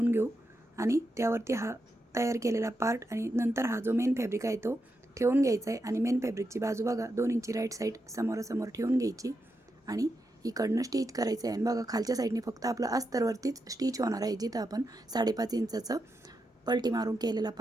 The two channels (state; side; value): normal; both; correlation 0.85